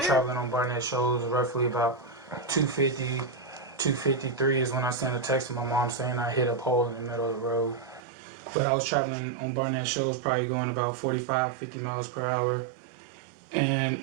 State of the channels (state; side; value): drops out; left; at 8.0 s